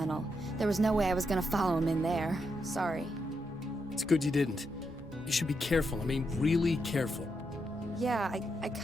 There was no way I was gonna follow him in there. Sorry. It's good you didn't. You should be careful. I mean, really careful. Yeah, I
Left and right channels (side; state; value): both; normal; correlation 0.82